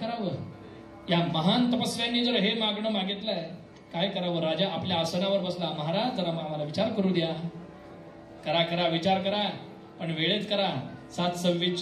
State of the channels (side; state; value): both; identical; correlation 1.00